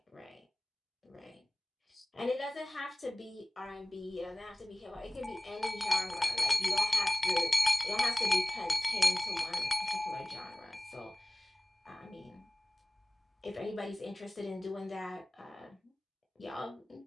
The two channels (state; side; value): normal; both; correlation 0.98